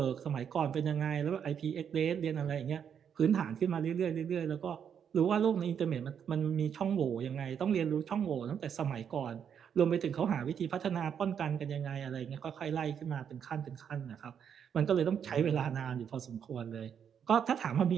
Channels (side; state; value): left; quieter; 8.0 dB